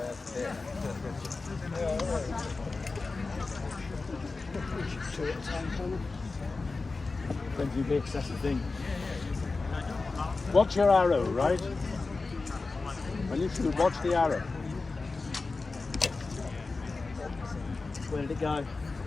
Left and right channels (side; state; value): right; quieter; 3.8 dB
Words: Plenty of mix, that's the thing. Watch your arrow, right? When you shoot, watch the arrow. Where did it go? I